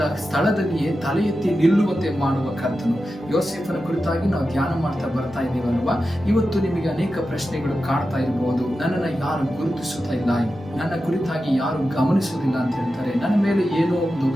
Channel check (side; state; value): both; normal; correlation 0.91